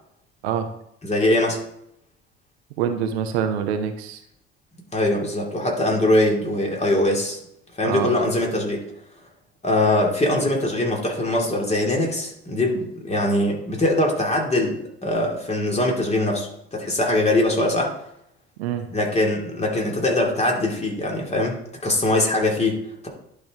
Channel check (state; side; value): normal; both; correlation 0.37